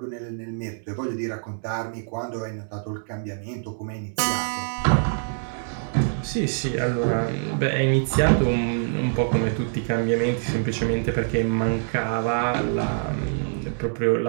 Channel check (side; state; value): left; silent; digital silence